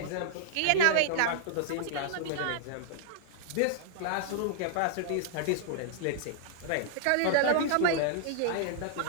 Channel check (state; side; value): different; both; correlation -0.01